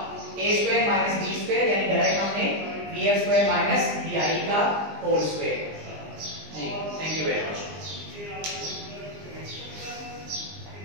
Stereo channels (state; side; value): late; left; 20 ms